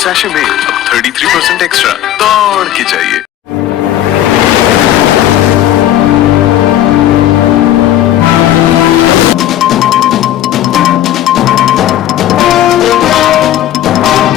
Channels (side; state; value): right; quieter; 12.5 dB